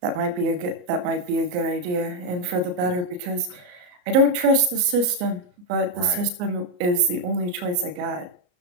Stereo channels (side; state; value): left; late; 34 ms